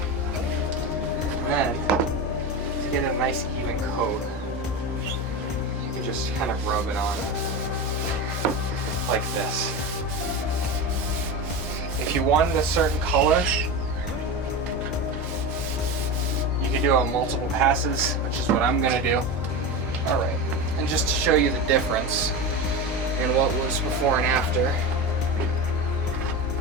And then, to get a nice even coat, you can just kind of rub it on like this. If you wanted a certain color, you can do it on multiple passes, which is what I'm gonna do. All right, and just to show you the difference in what was before and after.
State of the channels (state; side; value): normal; both; correlation 0.22